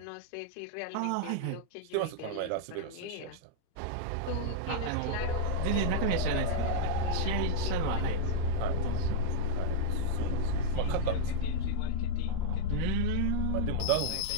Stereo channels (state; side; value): different; both; correlation -0.02